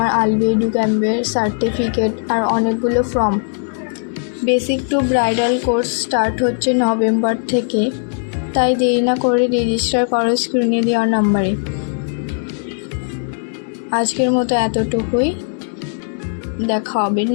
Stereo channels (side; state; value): right; silent; digital silence